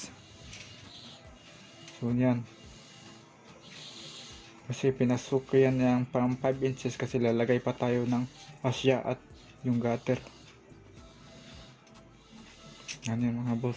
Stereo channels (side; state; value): both; identical; correlation 1.00